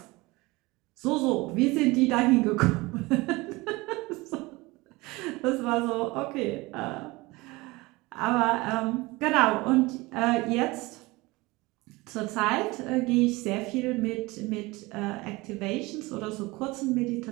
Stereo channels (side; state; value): left; quieter; 22.4 dB